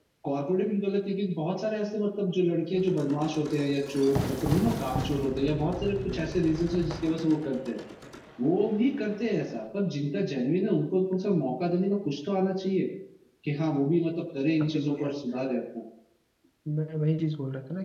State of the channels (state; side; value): identical; both; correlation 1.00